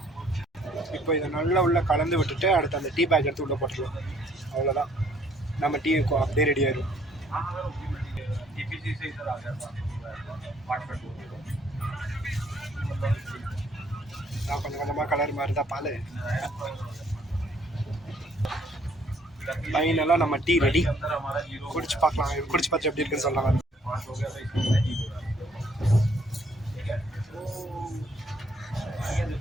இப்போ இதை நல்லா உள்ளே கலந்து விட்டுட்டு அடுத்து அந்த டீ பேக் எடுத்து உள்ளே போட்டுருவோம். அவ்வளோதான், நம்ம டீ அப்படியே ரெடி ஆயிடும். கொஞ்சம் கொஞ்சமாக கலர் மாதிரி தான் பால். ஃபைனலாக நம்ம டீ ரெடி. குடிச்சு பார்க்கலாம், குடிச்சு பார்த்து எப்படி இருக்குன்னு சொல்லலாம்.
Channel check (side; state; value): both; normal; correlation 0.64